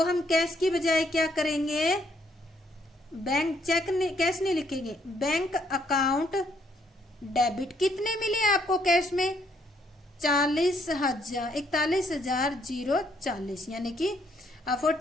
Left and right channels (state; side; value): normal; both; correlation 0.70